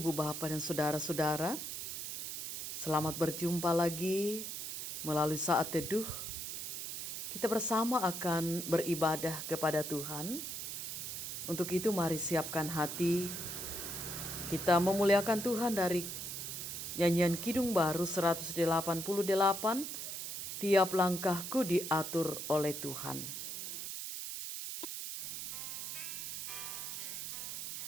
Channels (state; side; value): noise; right; hiss, 5 dB below the sound